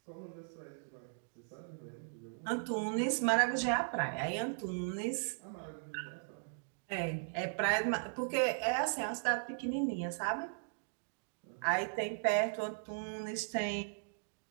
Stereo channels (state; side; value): silent; left; digital silence